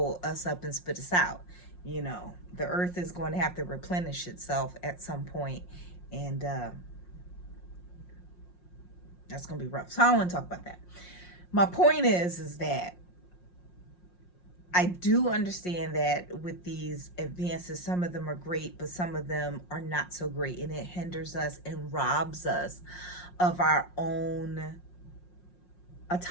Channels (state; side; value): late; right; 5.6 ms